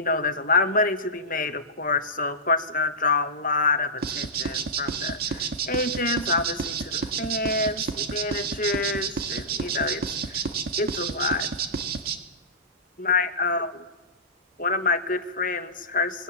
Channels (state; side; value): normal; both; correlation -0.16